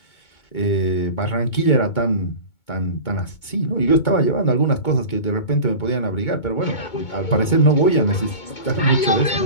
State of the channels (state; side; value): late; right; 2.2 ms